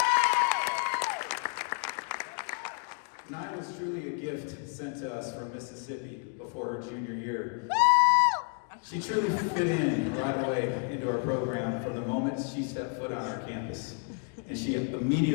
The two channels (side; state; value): right; quieter; 39.5 dB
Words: Nia was truly a gift sent to us from Mississippi before her junior year. She truly fit in right away into our program from the moment she set foot on our campus. And she